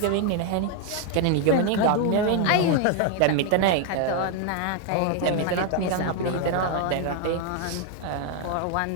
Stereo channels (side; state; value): both; different; correlation 0.01